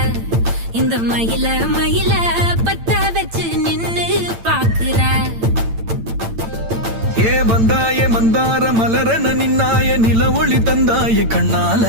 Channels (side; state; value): left; late; 8.9 ms